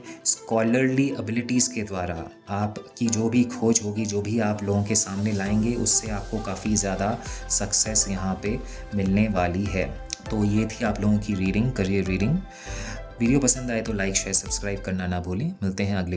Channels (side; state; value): both; identical; correlation 1.00